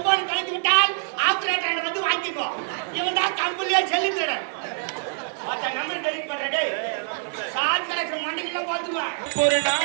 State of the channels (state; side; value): silent; left; digital silence